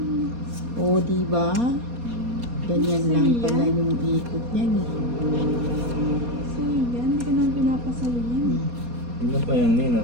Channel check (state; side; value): late; left; 4.2 ms